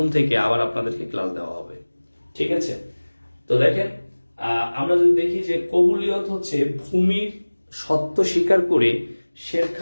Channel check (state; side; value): inverted; both; correlation -1.00